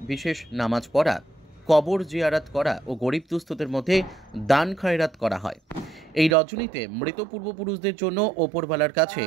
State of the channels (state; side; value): drops out; left; at 6.4 s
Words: বিশেষ নামাজ পড়া, কবর জিয়ারাত করা ও গরিব দুস্থদের মধ্যে দান খয়রাত করা হয়। এই রজনীতে মৃত পূর্বপুরুষদের জন্য ওপরওয়ালার কাছে